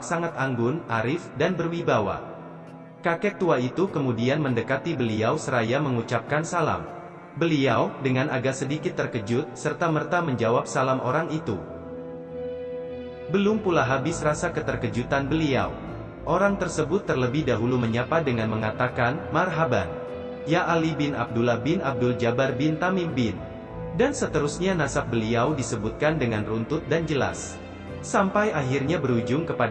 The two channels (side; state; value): both; identical; correlation 1.00